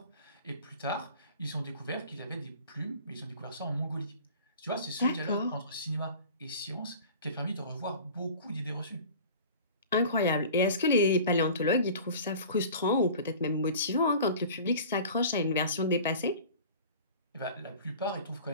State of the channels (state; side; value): inverted; both; correlation -0.41